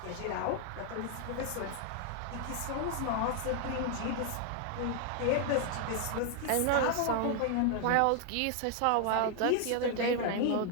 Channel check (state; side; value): different; both; correlation 0.00